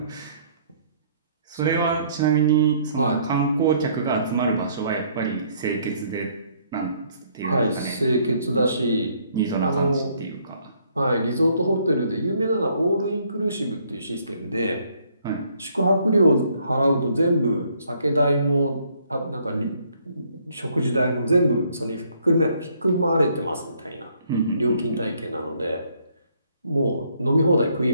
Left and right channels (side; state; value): both; inverted; correlation -0.66